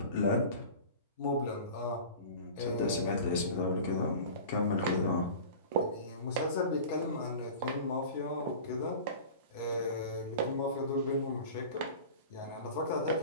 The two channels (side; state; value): both; inverted; correlation -0.37